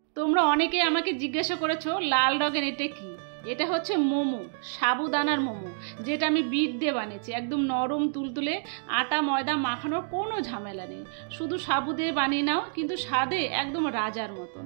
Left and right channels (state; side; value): silent; left; digital silence